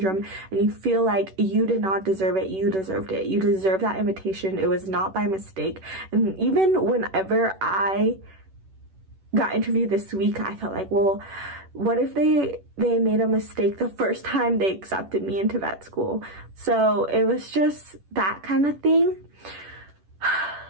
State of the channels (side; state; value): left; late; 10 ms